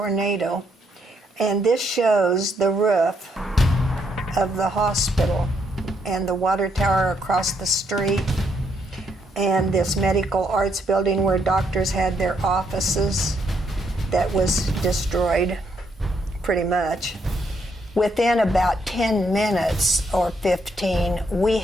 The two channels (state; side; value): normal; both; correlation 0.74